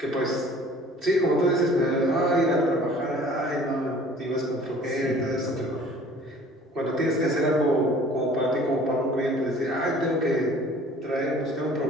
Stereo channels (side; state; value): both; normal; correlation 0.50